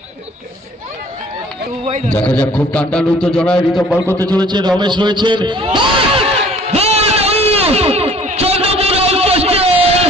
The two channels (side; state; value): both; normal; correlation 0.53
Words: দেখা যাক খুব টান উত্তেজনায় রিতম বল করতে চলেছে, রমেশ রয়েছেন, চন্দ্রপুর আউটপোস্টে